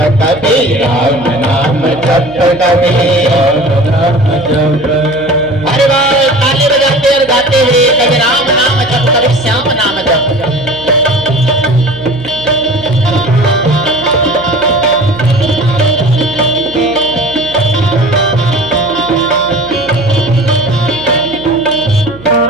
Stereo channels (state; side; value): noise; right; hum, 19 dB below the sound